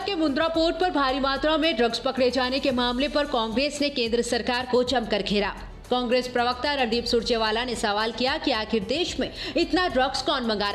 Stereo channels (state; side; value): identical; both; correlation 1.00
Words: के मुंद्रा पोर्ट पर भारी मात्रा में ड्रग्स पकड़े जाने के मामले पर कांग्रेस ने केंद्र सरकार को जमकर घेरा। कांग्रेस प्रवक्ता रणदीप सुरजेवाला ने सवाल किया कि आखिर देश में इतना ड्रग्स कौन मंगा